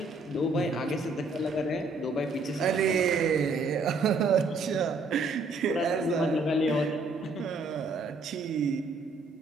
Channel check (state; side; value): quieter; left; 3.4 dB